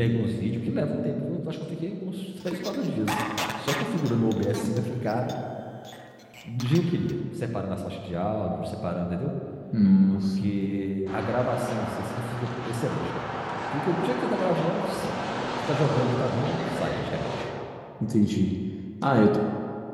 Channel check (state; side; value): identical; both; correlation 1.00